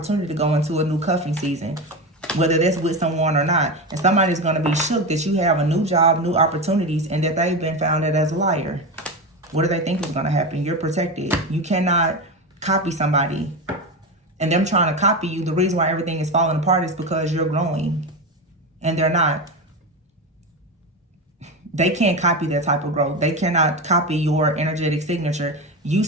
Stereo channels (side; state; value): both; normal; correlation 0.19